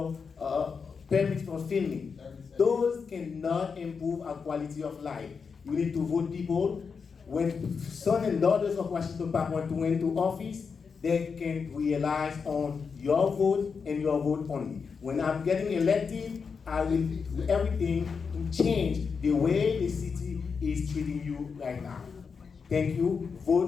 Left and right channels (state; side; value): quieter; right; 5.6 dB